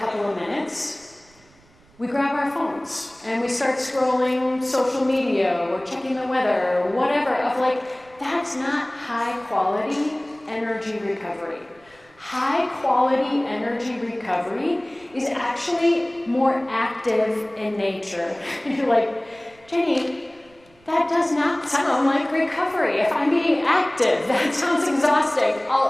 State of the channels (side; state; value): right; noise; rumble, 29 dB below the sound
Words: of minutes, we grab our phones and we start scrolling social media or checking the weather or whatever that's not high quality energy recovery. High quality energy recovery is actually more active in nature. You're like, Jenny, that does not sound like recovery. If I'm being active, that sounds exhausting.